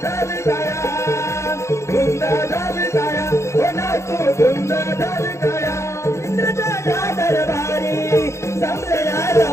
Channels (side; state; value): right; late; 0.14 ms